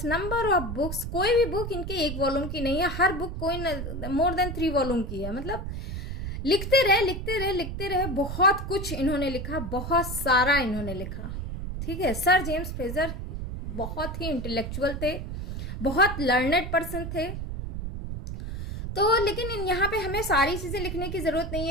number of books. कोई भी बुक इनके एक वॉल्यूम की नहीं है, हर बुक कोई मोर देन 3 वॉल्यूम की है। मतलब लिखते रहे, बहुत कुछ इन्होंने लिखा, बहुत सारा इन्होंने लिखा। ठीक है, सर जेम्स फ्रेजर बहुत ही इंटेलेक्चुअल थे, बहुत लर्नेड पर्सन थे। तो लेकिन यहाँ पे हमें सारी चीज़ें लिखने की ज़रूरत नहीं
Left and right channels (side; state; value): right; noise; rumble, 5 dB below the sound